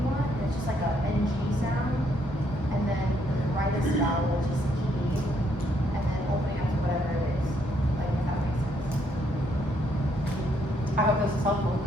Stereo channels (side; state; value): both; normal; correlation 0.72